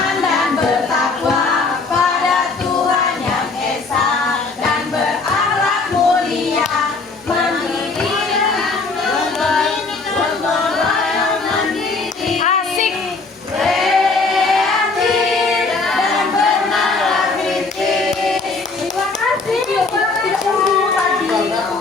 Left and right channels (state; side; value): quieter; right; 3.9 dB